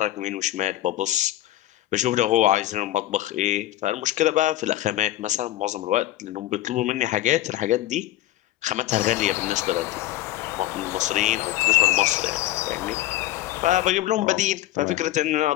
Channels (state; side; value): quieter; right; 15.1 dB